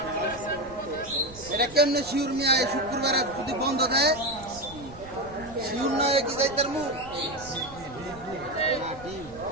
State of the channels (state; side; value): noise; right; rumble, 18 dB below the sound